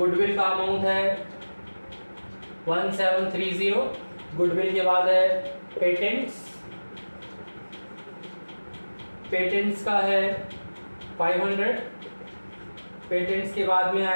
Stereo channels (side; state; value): both; inverted; correlation -1.00